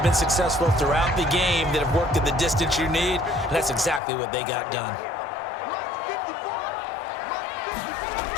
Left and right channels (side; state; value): right; drops out; at 4.0 s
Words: been successful throughout the game that have worked at the distance you need, and that's exactly what they got done.